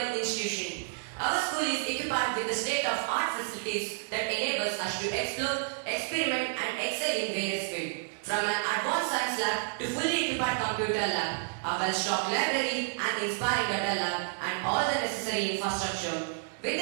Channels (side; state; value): left; silent; digital silence